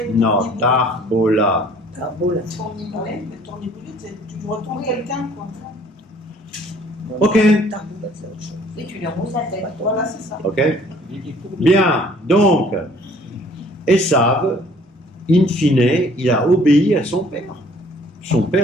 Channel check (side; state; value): both; normal; correlation 0.57